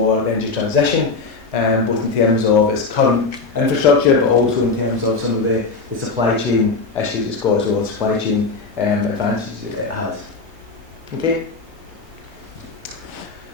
the energy transition, both in terms of its current infrastructure, but also in terms of some of the supply chain issues it's got as well, supply chain advantages that it has. Okay.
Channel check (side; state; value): right; quieter; 4.1 dB